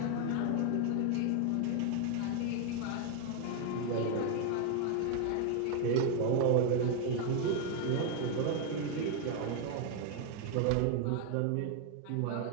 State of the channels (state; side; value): different; both; correlation 0.01